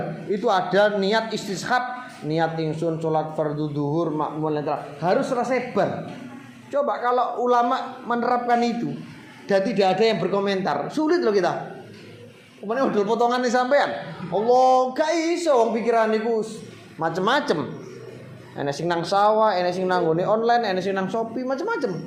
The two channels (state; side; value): identical; both; correlation 1.00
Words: itu ada niat istishab, niat ingsun sholat fardu duhur makmul harus selesai bar. Coba kalau ulama menerapkan itu dan tidak ada yang berkomentar, sulit loh kita. Kemudian udah potongan nih sampean. Allah gak iso wong pikiran niku macem-macem. Enek sing nang sawah, enek sing nang ngone online, enek sing nang Shopee, macem-macem.